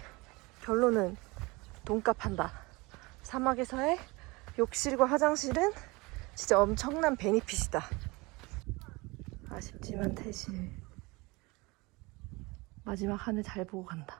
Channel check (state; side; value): quieter; left; 24.6 dB